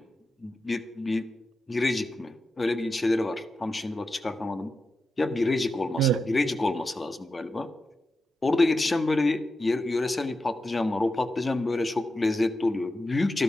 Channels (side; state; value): both; normal; correlation 0.89